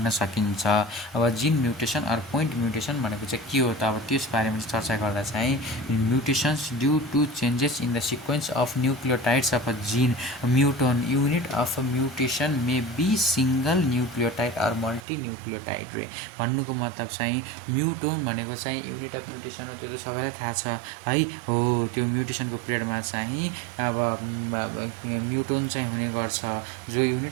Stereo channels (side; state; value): left; drops out; at 15.1 s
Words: सकिन्छ। अब gene mutation or point mutation भनेको चाहिँ के हो त, अब त्यस बारेमा चर्चा गर्दा चाहिँ mutations due to changes in the sequence of nucleotides of a gene muton unit of a mutation may be single nucleotide or multi nucleotide रे। भन्नुको मतलब चाहिँ म्युटोन भनेको चाहिँ युनिट अफ म्युटेसन हो, त्यो त सबैलाई थाहा छ है हो। त्यो म्युटेसनको पिरियडमा चाहिँ अब म्युटोन चाहिँ हुने गर्छ, जो